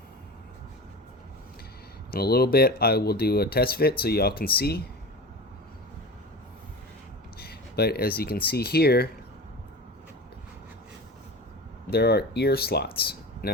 In a little bit I will do a test fit so y'all can see, but as you can see here, there are ear slots.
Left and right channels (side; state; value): both; normal; correlation 0.31